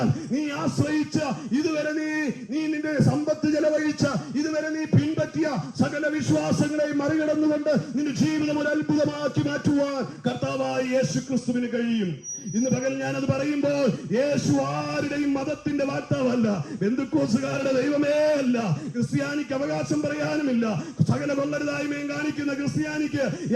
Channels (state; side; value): identical; both; correlation 1.00